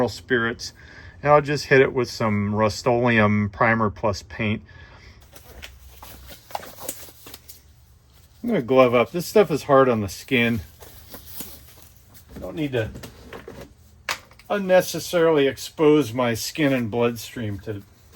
spirits, and I'll just hit it with some Rust-Oleum Primer Plus paint. I'm going to glove up. This stuff is hard on the skin. I don't need to unnecessarily expose my skin and bloodstream to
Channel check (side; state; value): both; identical; correlation 1.00